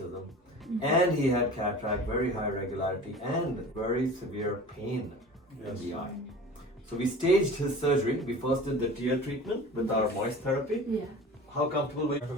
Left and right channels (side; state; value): both; normal; correlation 0.39